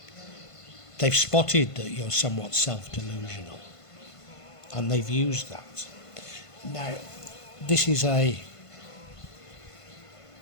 They've spotted that you're somewhat self-delusional, and they've used that. Now, this is I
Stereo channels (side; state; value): right; late; 1.5 ms